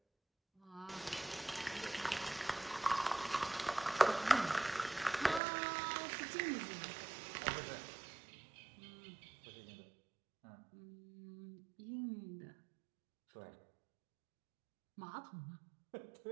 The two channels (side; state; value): left; drops out; at 5.4 s